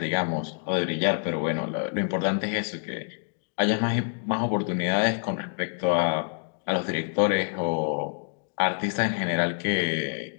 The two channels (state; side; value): silent; right; digital silence